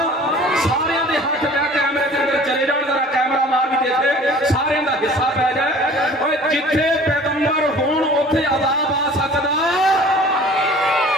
सारियां दे हाथ लै कैमरे दे अंदर चले जाण, जरा कैमरा मार भी देखे, सारियां दा हिस्सा पै जाए। ओए जिथे पैगंबर होण उत्थे अजाब आ सकदा।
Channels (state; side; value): normal; both; correlation 0.47